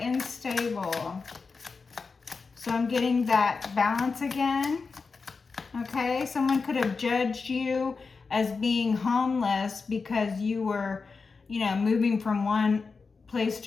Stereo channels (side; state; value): right; quieter; 4.6 dB